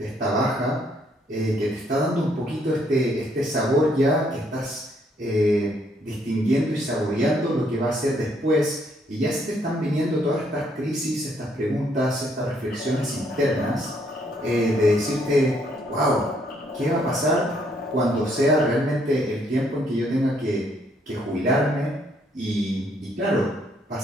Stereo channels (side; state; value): both; normal; correlation 0.69